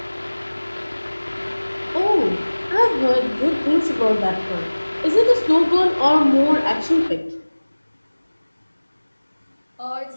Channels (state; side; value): inverted; both; correlation -1.00